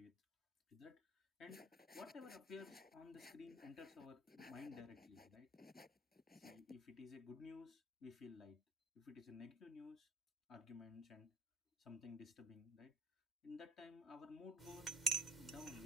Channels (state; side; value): normal; both; correlation 0.44